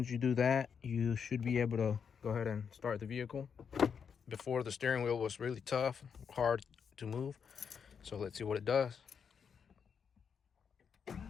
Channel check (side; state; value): right; quieter; 6.7 dB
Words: you do that, you should be able to go ahead and start the vehicle. Before, the steering wheel was really tough, hard to move. So let's see what it does.